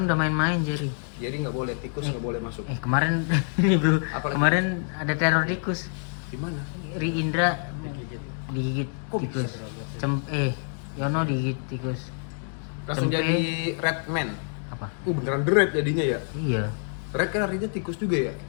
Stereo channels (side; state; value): right; silent; 60 dB below the other